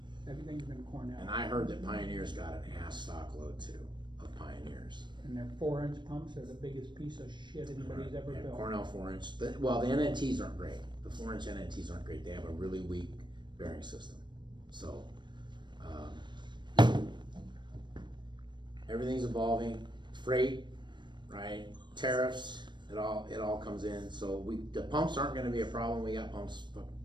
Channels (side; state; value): left; late; 0.22 ms